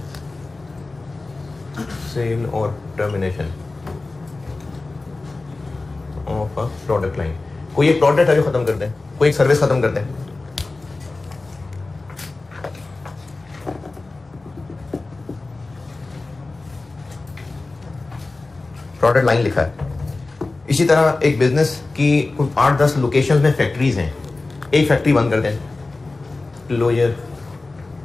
सेल और termination of a product line. कोई एक प्रोडक्ट है जो ख़त्म कर दें, कोई एक सर्विस ख़त्म कर दें। प्रोडक्ट लाइन लिखा है। इसी तरह एक बिजनेस की 8-10 लोकेशंस में फैक्ट्रीज हैं, एक फैक्ट्री बंद कर दें, क्लोजर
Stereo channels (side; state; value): right; quieter; 3.4 dB